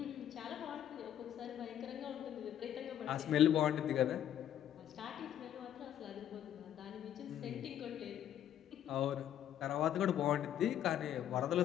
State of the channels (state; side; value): quieter; right; 10.7 dB